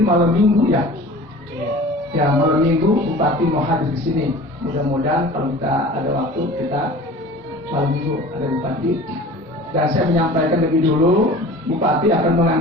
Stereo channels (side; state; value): both; normal; correlation 0.41